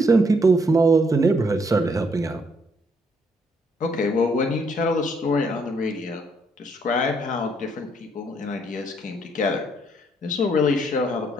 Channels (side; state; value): both; normal; correlation 0.70